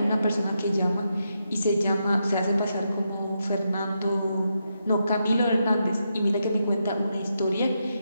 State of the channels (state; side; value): inverted; both; correlation -0.83